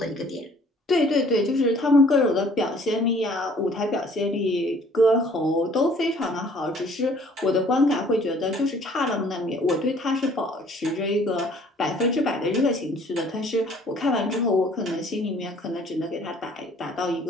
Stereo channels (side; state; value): both; normal; correlation 0.56